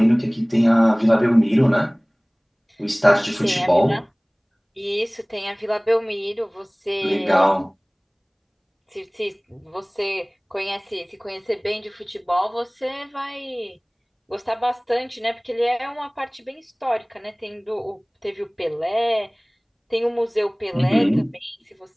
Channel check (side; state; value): both; identical; correlation 1.00